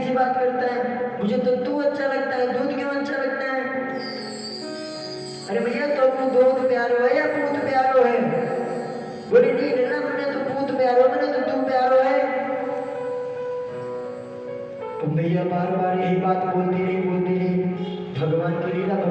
बात करता है, मुझे तो तू अच्छा लगता है, दूध क्यों अच्छा लगता है? अरे भैया तो दूध प्यारो है या पूत प्यारो है? बोले नहीं लल्ला मैंने तो पूत प्यारो, मैंने तो तू प्यारो है। तो भैया बार बार यही बात बोलती रही। भगवान की लीला,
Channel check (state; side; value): identical; both; correlation 1.00